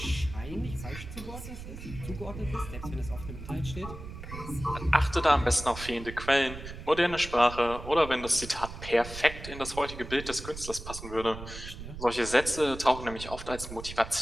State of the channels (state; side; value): noise; right; rumble, 11 dB below the sound